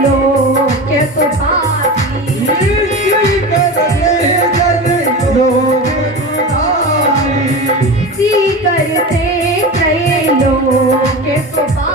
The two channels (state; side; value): normal; both; correlation 0.27